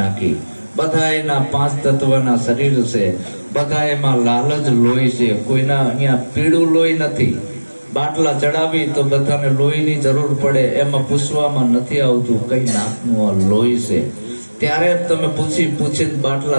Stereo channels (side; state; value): both; inverted; correlation -1.00